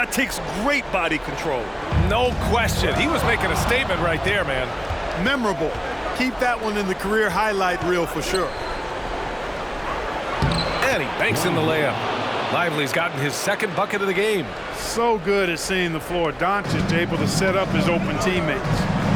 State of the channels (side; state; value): both; identical; correlation 1.00